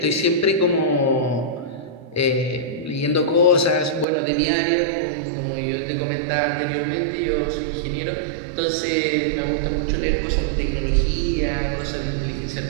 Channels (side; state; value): left; drops out; at 4.0 s